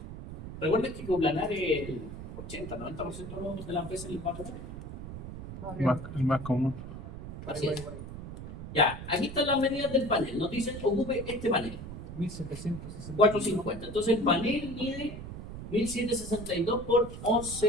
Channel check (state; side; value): noise; right; rumble, 10 dB below the sound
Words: Recuerden que coplanar es el 80-90% de las veces les va a tocar. El más común. Así es. Ya, aquí están las medidas del panel. Nos dicen, ocupe este panel. 450. Entonces el panel mide 1762 por